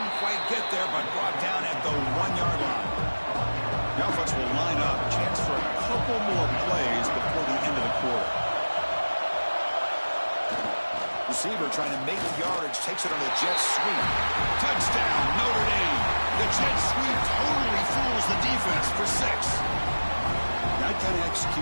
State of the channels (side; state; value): both; inverted; correlation -1.00